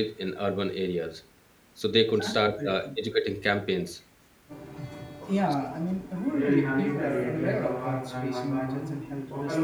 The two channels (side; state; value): both; identical; correlation 1.00